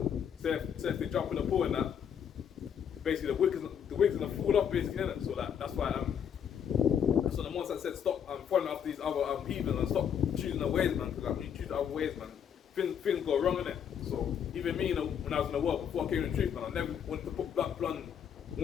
say if they jump in the pool and that, basically the wig's gonna fall off basically, innit? So like that's why so the ones that said stop following after these other heathens and stop choosing the ways, man. Because like, when you choose other ways, man, things go wrong, innit? So even me, when I was in the world before I came in the truth, man, I never wanted to put blonde.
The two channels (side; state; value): right; quieter; 8.2 dB